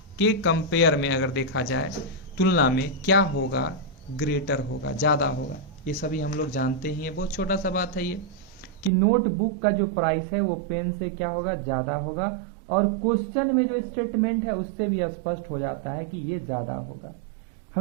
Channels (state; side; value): drops out; left; at 8.9 s